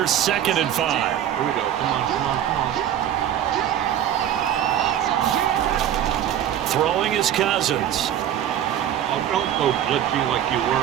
2nd and 5. Here we go. Come on. Throwing is Cousins. Oh, don't go glitchy like you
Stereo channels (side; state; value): left; quieter; 10.7 dB